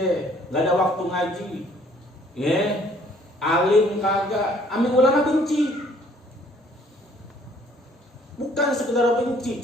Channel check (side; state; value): both; normal; correlation 0.60